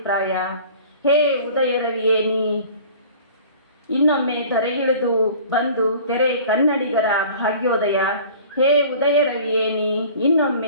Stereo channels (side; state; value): both; inverted; correlation -0.45